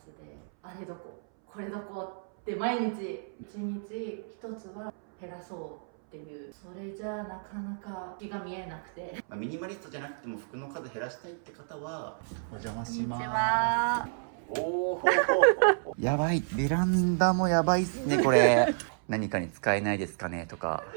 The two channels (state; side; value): silent; left; 57 dB below the other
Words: あれどここれどこって毎日一日一つは減らそうっていう、それじゃなかなか気が見えなくて、ミニマリストじゃなくても服の数減らしたいって方はお邪魔しこんにちます。は。おおやばい、ベランダもやばいっすねこれ何かに使えないですかねとか